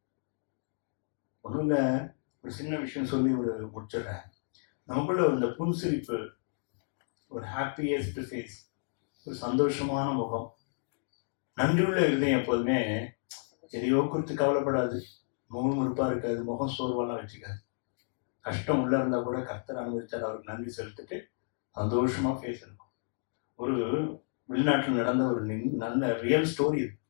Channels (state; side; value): silent; right; digital silence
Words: ஒண்ணுங்க, ஒரு சின்ன விஷயம் சொல்லி முடிச்சிடுறேன். நமக்குள்ள இந்த புன்சிரிப்பு, ஒரு ஹாப்பியஸ்ட் ஃபேஸ், ஒரு சந்தோஷமான முகம், நன்றியுள்ள இருதயம் எப்போதுமே எதையோ குறித்து கவலைப்படாது, முகமுறுப்பா இருக்காது, முகம் சோர்வெல்லாம் வச்சுக்காது. கஷ்டம் உள்ள இருந்தா கூட கர்த்தர் அனுபவிச்சார், அவருக்கு நன்றி செலுத்திட்டு சந்தோஷமா ஃபேஸ் இருக்கும். ஒரு வெளிநாட்டில் நடந்த ஒரு நல்ல ரியல் ஸ்டோரி இது.